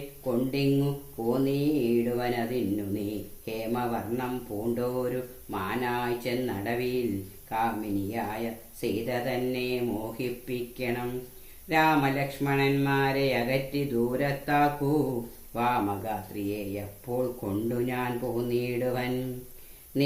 കൊണ്ടിങ്ങു പോന്നീടുവനതിന്നു നീ ഹേമവർണം പൂണ്ടോരു മാനായി ചെന്നടവിൽ കാമിനിയായ സീത തന്നെ മോഹിപ്പിക്കണം. രാമലക്ഷ്മണന്മാരെ അകറ്റി ദൂരത്താക്കൂ, വാമഗാത്രിയെ അപ്പോൾ കൊണ്ടു ഞാൻ പോന്നിടുവൻ.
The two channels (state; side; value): identical; both; correlation 1.00